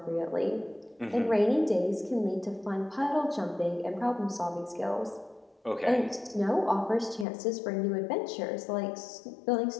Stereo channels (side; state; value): right; drops out; at 7.2 s